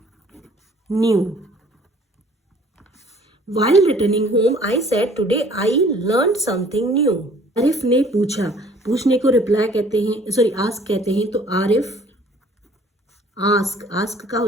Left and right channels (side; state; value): both; normal; correlation 0.55